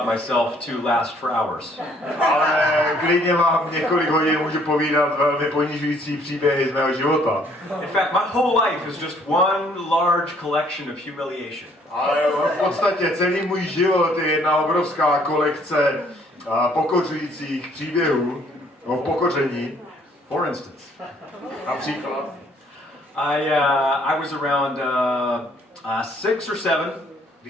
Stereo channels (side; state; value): both; normal; correlation 0.62